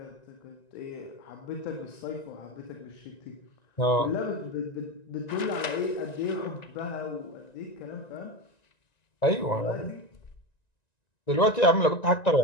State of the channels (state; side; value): late; right; 1.9 ms